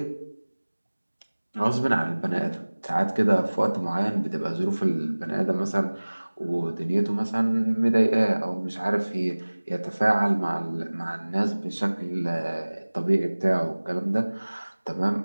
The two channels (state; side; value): inverted; both; correlation -1.00